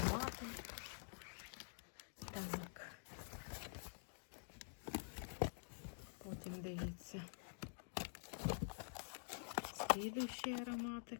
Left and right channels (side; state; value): right; silent; digital silence